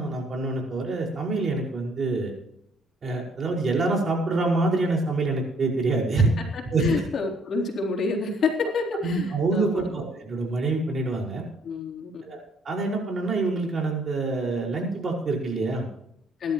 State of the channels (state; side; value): normal; both; correlation 0.63